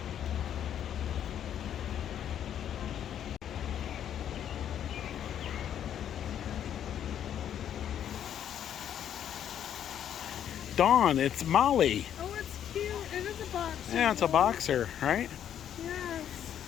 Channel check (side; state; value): right; quieter; 9.8 dB